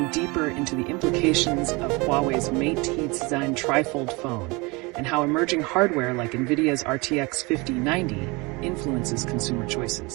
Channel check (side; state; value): left; quieter; 26.2 dB